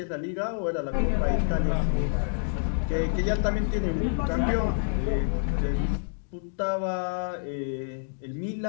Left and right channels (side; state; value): right; silent; digital silence